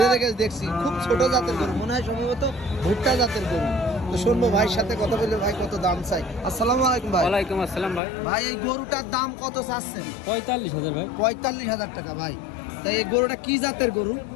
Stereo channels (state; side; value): drops out; right; at 8.0 s